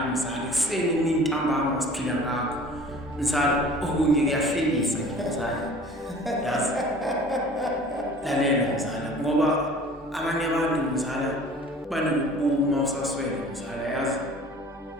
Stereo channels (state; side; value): normal; both; correlation 0.46